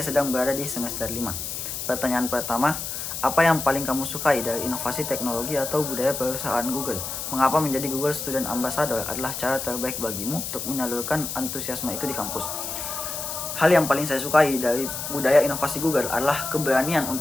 sedang berada di semester 5. Pertanyaan pertama, apa yang paling kamu sukai dari inovasi teknologi atau budaya perusahaan Google? Mengapa menjadi Google Student Ambassador adalah cara terbaik bagimu untuk menyalurkan antusiasme itu di kampus? Hal yang paling saya sukai dari budaya inovasi Google adalah keberanian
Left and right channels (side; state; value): left; noise; hiss, 5 dB below the sound